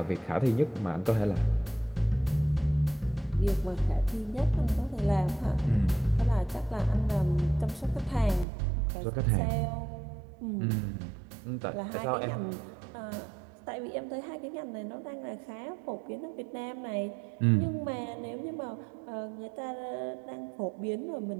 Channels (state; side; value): drops out; left; at 8.5 s